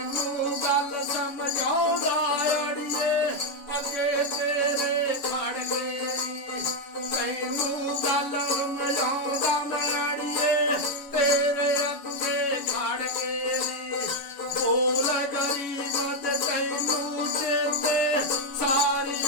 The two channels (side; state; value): right; late; 7.0 ms